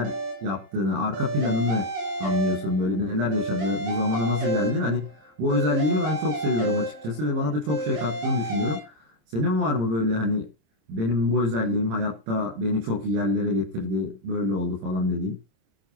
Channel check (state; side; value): late; left; 26 ms